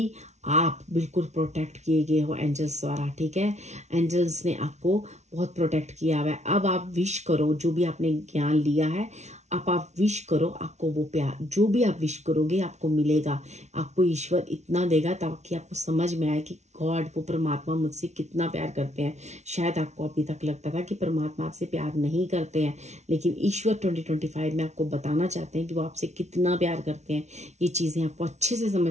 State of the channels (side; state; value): left; late; 0.32 ms